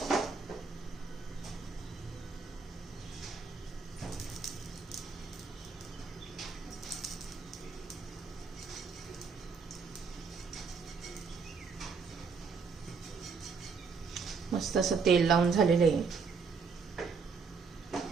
मस्त असं तेल लावून झालेलं आहे.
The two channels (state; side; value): quieter; left; 5.1 dB